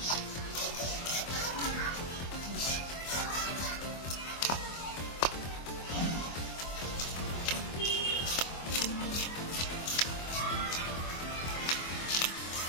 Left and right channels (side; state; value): right; late; 24 ms